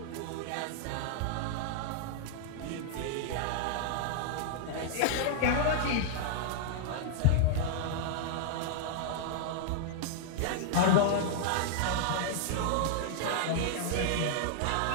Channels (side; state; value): both; different; correlation -0.01